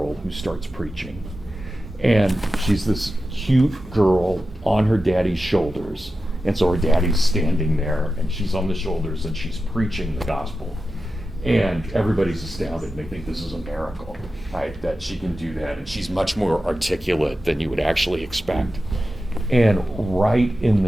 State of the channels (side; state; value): both; normal; correlation 0.92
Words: who starts preaching. And she's this cute girl on her daddy's shoulders. And so her daddy's standing there, and she's on the shoulders, and she's preaching the gospel. And everybody's astounded. They think this is a miracle, right, that she can do that. And she's much more articulate than you would actually expect. And right in